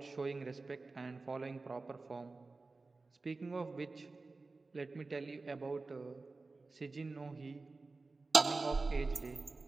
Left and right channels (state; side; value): quieter; left; 3.6 dB